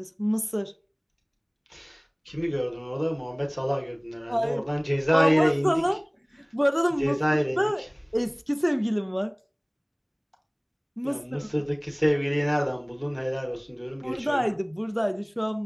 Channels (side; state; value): both; identical; correlation 1.00